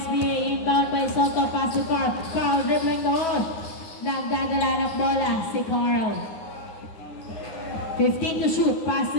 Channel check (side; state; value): right; late; 9.7 ms